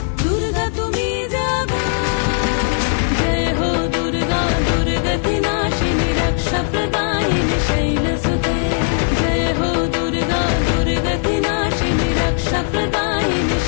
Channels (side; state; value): right; silent; digital silence